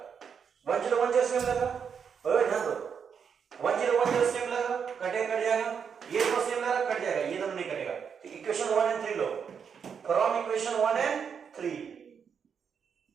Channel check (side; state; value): left; quieter; 6.9 dB